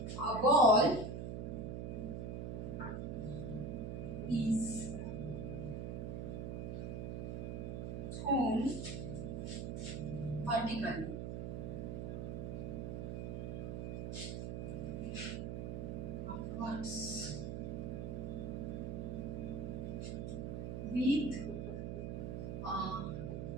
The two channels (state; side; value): noise; right; hum, 4 dB below the sound